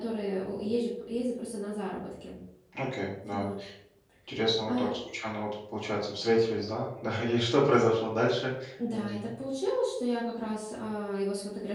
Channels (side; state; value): both; identical; correlation 1.00